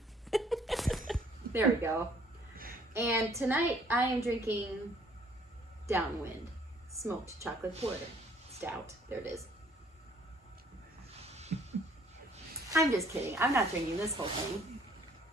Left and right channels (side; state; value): both; normal; correlation 0.60